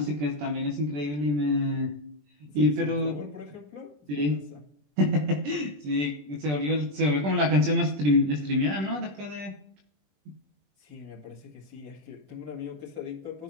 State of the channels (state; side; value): late; left; 20 ms